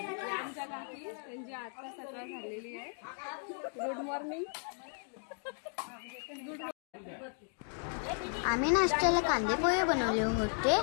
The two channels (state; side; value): silent; right; 54 dB below the other